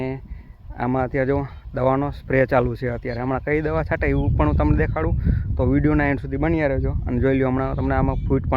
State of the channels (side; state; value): both; identical; correlation 1.00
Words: आमां अत्यारे जो दवानो स्प्रे चालू है। अत्यारे हमणां कई दवा छांटे एवुं पण हुं तमने देखाडुं, तो विडियोना एंड सुधी बन्या रहेजो। अने जोई ल्यो हमणां तमने आमां फूट